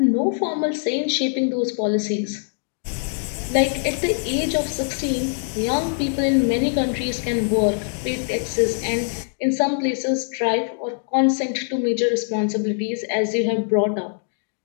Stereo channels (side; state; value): right; silent; digital silence